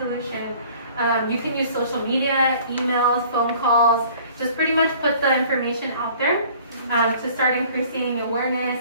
You can use social media, emails, phone calls, just pretty much put the information out there to start increasing awareness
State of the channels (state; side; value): inverted; both; correlation -0.52